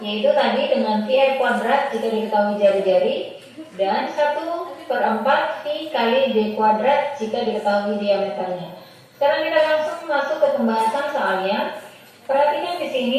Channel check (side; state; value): both; identical; correlation 1.00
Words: yaitu tadi dengan VR kuadrat jika diketahui jari-jari dan 1/4 V kali D kuadrat jika diketahui diameternya. Sekarang kita langsung masuk ke pembahasan soalnya. Perhatikan di